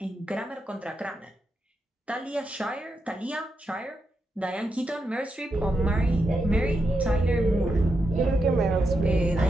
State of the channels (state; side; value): normal; both; correlation 0.85